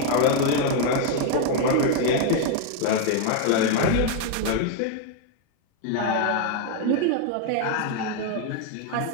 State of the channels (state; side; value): different; both; correlation 0.00